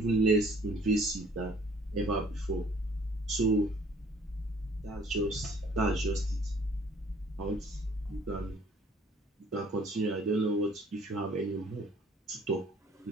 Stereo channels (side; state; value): both; normal; correlation 0.56